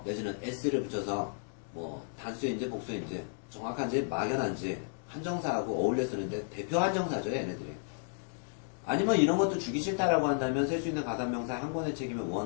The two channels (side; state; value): right; silent; digital silence